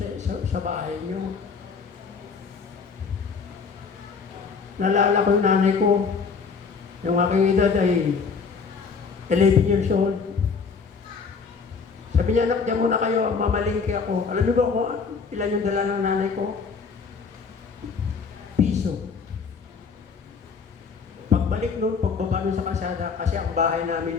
sa bahay nyo. Nalala ko yung nanay ko. Yung aking edad ay 11 years old. Sabi niya, anak, diyan muna kayo, mamalingki ako. Alam niyo ba kung ilan yung dala ng nanay ko? Piso. Pagbalik noon, pagbaba noon sa kalsada, kasi ang bahay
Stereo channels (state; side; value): quieter; right; 5.3 dB